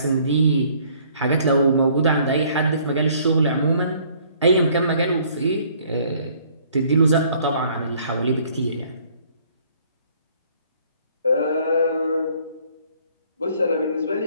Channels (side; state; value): both; inverted; correlation -0.60